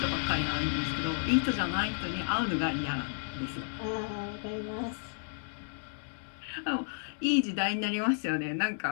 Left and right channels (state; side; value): silent; right; digital silence